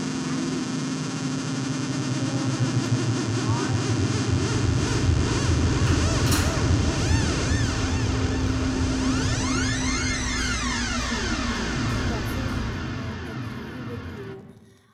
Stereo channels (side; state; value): both; identical; correlation 1.00